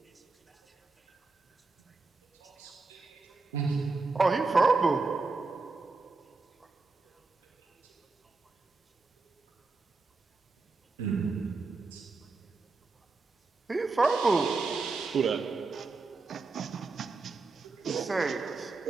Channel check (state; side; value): quieter; left; 3.9 dB